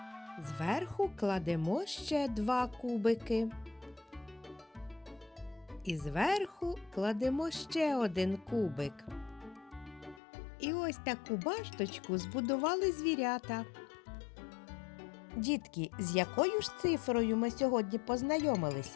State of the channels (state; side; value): drops out; right; at 10.2 s